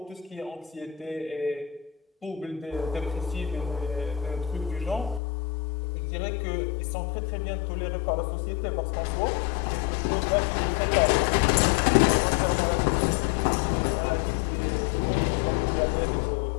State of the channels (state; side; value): drops out; right; at 5.2 s